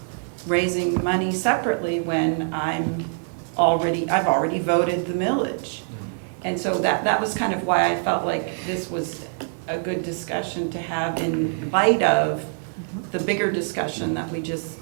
raising money separately when I've already voted the millage? And so that was kind of why I felt like this was a good discussion to have in light of the bigger discussion that we just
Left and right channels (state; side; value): silent; left; digital silence